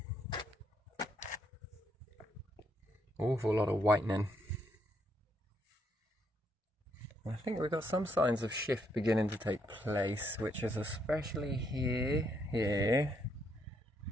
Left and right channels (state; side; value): normal; both; correlation 0.74